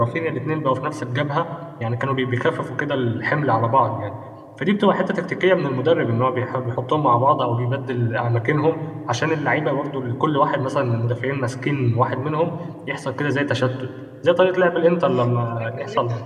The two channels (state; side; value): identical; both; correlation 1.00